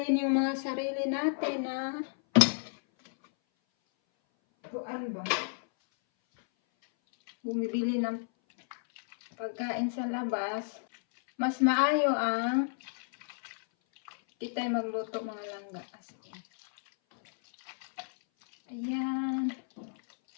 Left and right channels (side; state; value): right; silent; 57 dB below the other